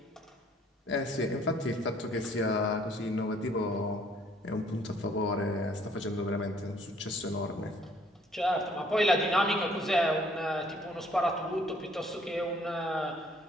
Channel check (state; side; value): normal; both; correlation 0.61